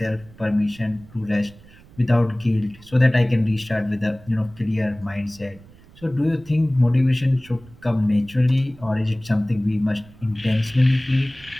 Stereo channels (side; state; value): right; noise; rumble, 24 dB below the sound